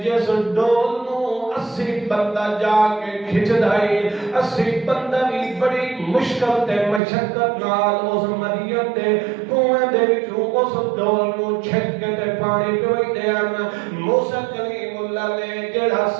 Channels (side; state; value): left; drops out; at 7.0 s